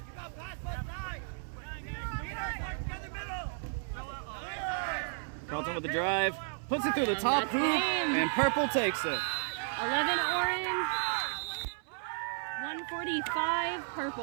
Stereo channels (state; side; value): silent; left; 55 dB below the other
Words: Carlton with the drive, puts it through the top hoop, and Purple takes it. 11 orange, 145